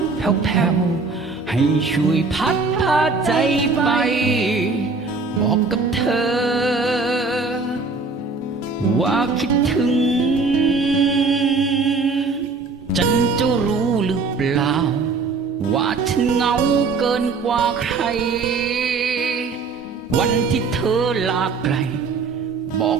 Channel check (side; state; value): left; quieter; 4.3 dB